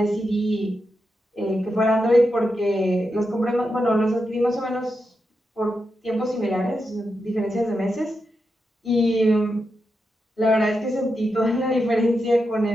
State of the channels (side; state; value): both; normal; correlation 0.87